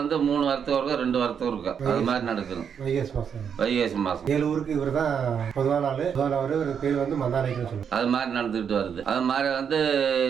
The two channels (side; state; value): left; quieter; 7.4 dB